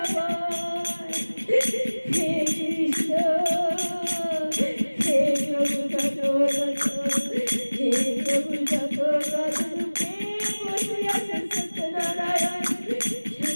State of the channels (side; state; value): both; inverted; correlation -1.00